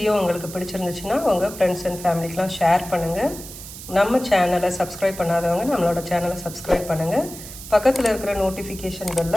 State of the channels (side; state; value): right; noise; hiss, 13 dB below the sound